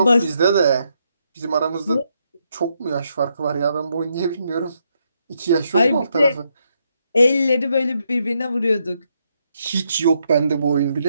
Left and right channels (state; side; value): inverted; both; correlation -0.78